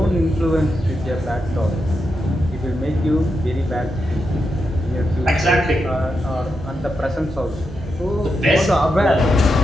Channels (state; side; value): normal; both; correlation 0.86